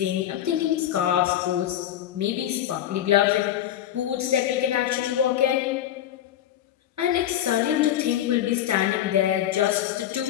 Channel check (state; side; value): quieter; right; 11.6 dB